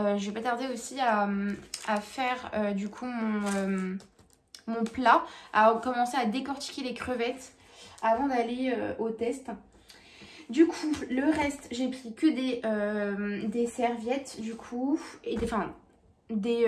vais pas tarder aussi à faire du coup mon plat, à commencer à décortiquer les crevettes avant d'aller au test. Du coup, le reste, j'ai pris que des serviettes du coup, et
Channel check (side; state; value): both; identical; correlation 1.00